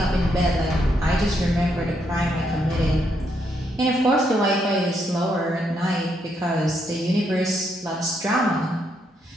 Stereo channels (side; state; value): both; normal; correlation 0.76